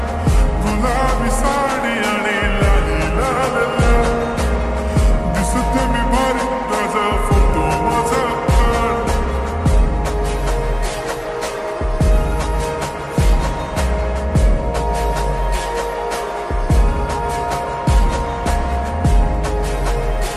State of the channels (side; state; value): both; identical; correlation 1.00